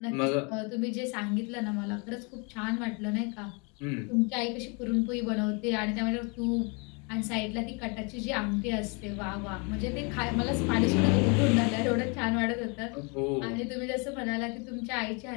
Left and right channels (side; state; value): right; quieter; 32.7 dB